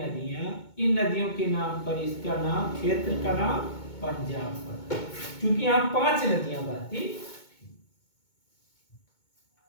इन नदियों के नाम पर इसका नाम, क्षेत्र का नाम पंजाब पड़ा, क्योंकि यहां 5 नदियां बहती।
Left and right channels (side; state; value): right; late; 2.2 ms